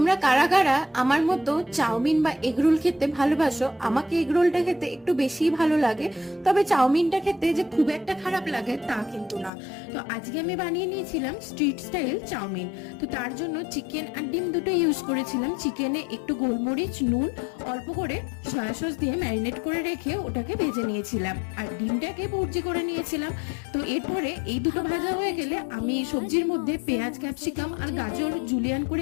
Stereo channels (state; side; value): drops out; right; at 9.5 s